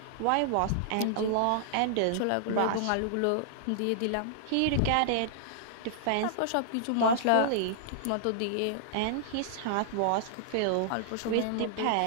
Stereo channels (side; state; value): both; different; correlation -0.01